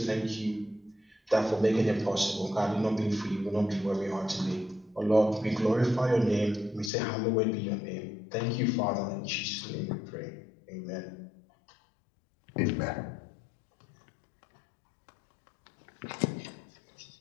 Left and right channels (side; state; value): right; drops out; at 6.9 s